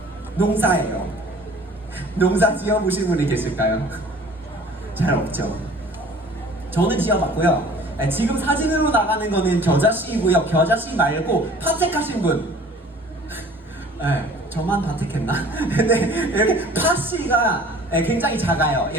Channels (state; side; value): normal; both; correlation 0.49